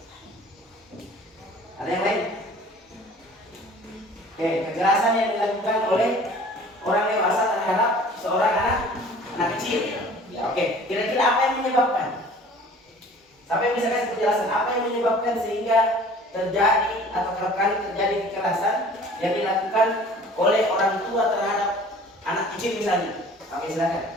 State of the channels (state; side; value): normal; both; correlation 0.48